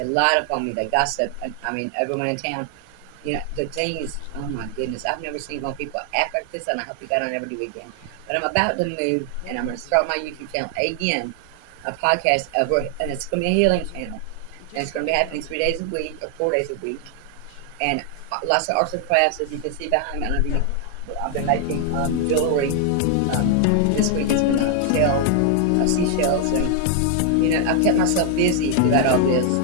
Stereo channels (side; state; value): both; different; correlation 0.00